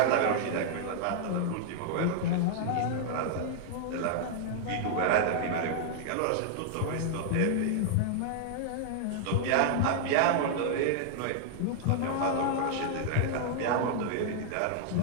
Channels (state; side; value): different; both; correlation -0.01